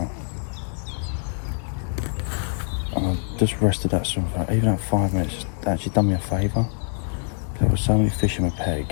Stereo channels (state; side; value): silent; right; digital silence